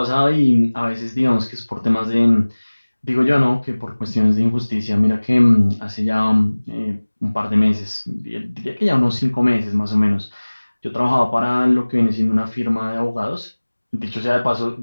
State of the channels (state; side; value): inverted; both; correlation -1.00